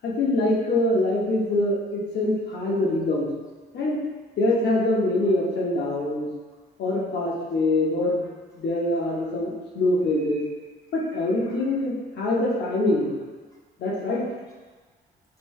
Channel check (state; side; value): normal; both; correlation 0.54